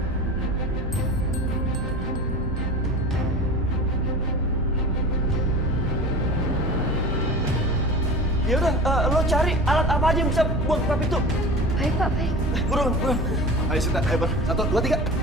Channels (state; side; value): normal; both; correlation 0.35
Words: Ya udah, lo cari alat apa aja yang bisa buat buka pintu. Baik, Pak, baik. Buruan. Ayo Sinta, ayo Bar. 1, 2, 3.